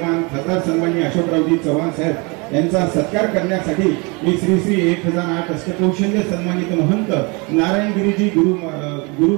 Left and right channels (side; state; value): left; quieter; 29.1 dB